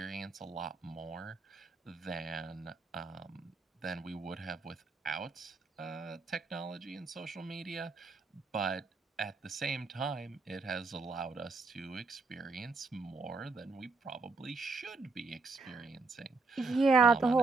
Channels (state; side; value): quieter; left; 4.0 dB